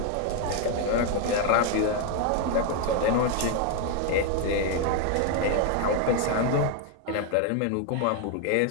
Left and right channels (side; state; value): both; different; correlation 0.01